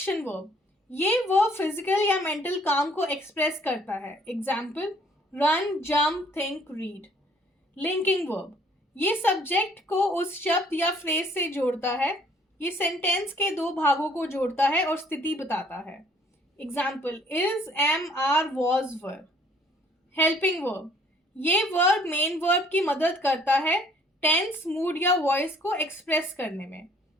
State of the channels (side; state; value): both; normal; correlation 0.59